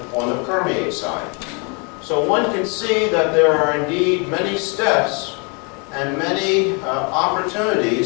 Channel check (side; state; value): right; quieter; 34.2 dB